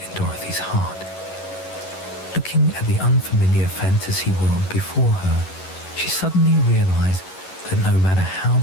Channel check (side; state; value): right; late; 11 ms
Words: in Dorothy's heart. Looking at the unfamiliar fantasy world before her, she suddenly realized that no matter